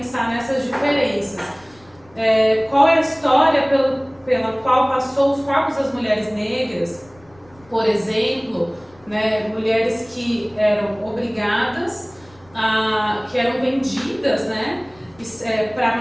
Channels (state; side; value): noise; left; rumble, 29 dB below the sound